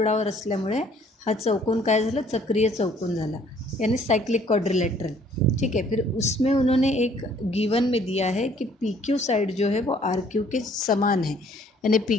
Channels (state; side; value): normal; both; correlation 0.60